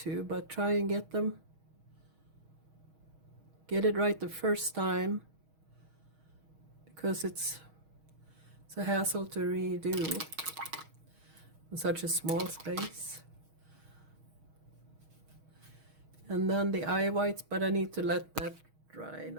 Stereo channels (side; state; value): left; late; 6.3 ms